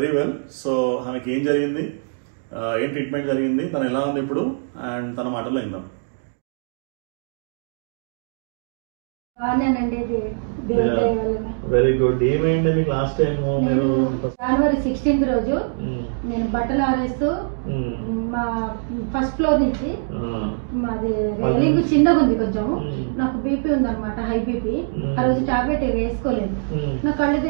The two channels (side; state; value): left; silent; digital silence